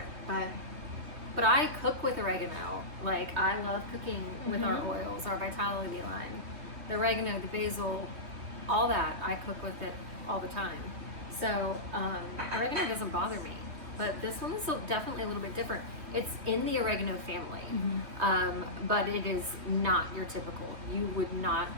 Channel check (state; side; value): late; left; 3.1 ms